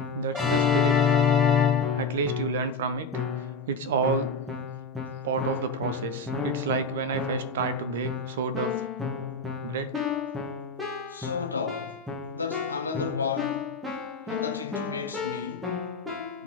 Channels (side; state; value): right; quieter; 3.2 dB